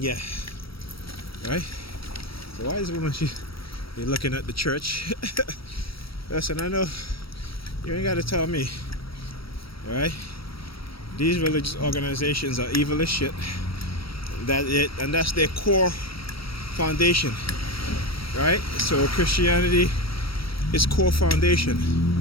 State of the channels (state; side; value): late; right; 0.75 ms